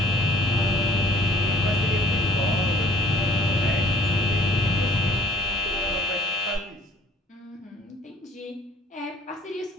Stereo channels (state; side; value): normal; both; correlation 0.58